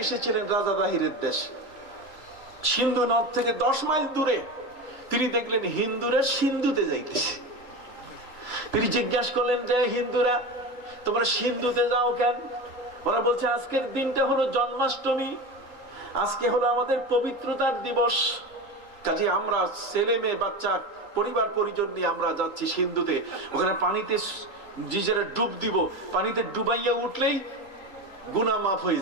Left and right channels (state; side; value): late; right; 3.8 ms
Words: এসেছিলেন রাজা দাহিরের দেশ, সিন্ধু নদ থেকে 10 মাইল দূরে। তিনি দেখলেন হিন্দুরা সিন্ধুতে যাইতেছে। তিনি জিজ্ঞাসা করলেন যে হিন্দুরা তোমরা সিন্ধুতে যাও কেন? ওরা বলছে আজকের দিনটা হলো জন্মাষ্টমী, আজকে হলো আমাদের পবিত্রতার দিবস। কাজে আমরা ছেলে মেয়ে বাচ্চা পরিবার পরিজন নিয়ে আমরা যাচ্ছি সিন্ধুতে, ওখানে পানিতে নিজেরা ডুব দিব, পানিতে ডুবাইয়া উঠলেই গুনাহ মাফ হয়ে